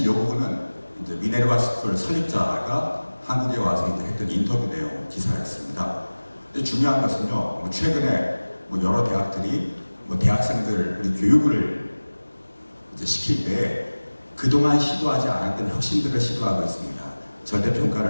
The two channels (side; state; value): both; inverted; correlation -1.00